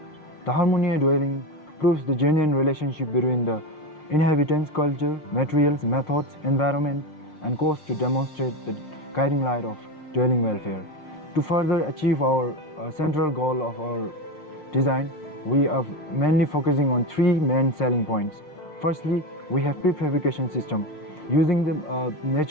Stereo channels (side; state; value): right; late; 6.5 ms